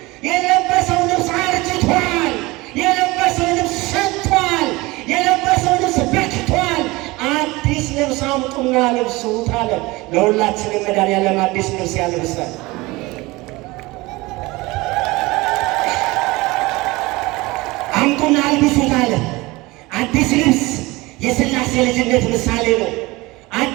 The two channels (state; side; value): quieter; left; 21.8 dB